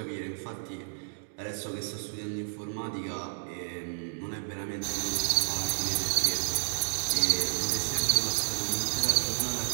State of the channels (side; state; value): left; silent; digital silence